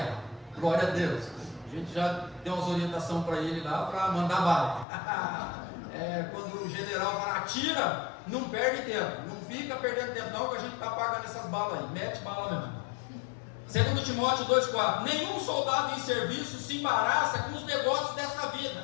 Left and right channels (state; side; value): drops out; right; at 4.9 s